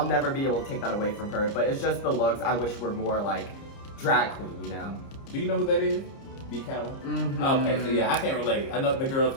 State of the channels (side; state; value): right; late; 30 ms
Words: never be able to take that away from her. But it's just the looks I wish were more like drag queen, you know? Do you know who that is? B. Calla? Mm-hmm. Okay, so yeah, I can't relate. I know the girls